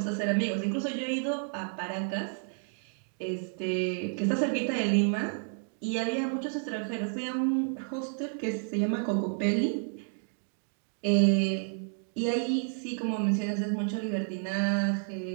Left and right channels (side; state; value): left; silent; 57 dB below the other